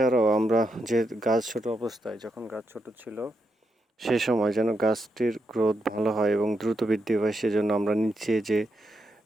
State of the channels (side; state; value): both; normal; correlation 0.83